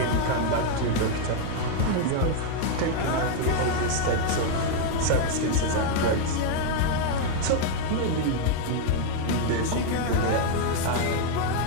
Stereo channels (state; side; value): different; both; correlation 0.00